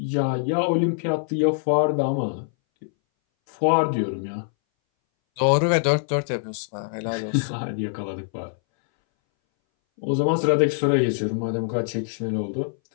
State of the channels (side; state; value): right; silent; 61 dB below the other